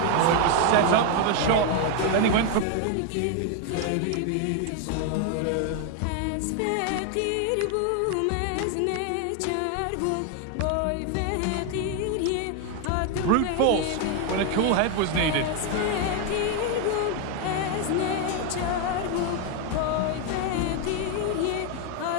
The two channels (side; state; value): both; different; correlation 0.01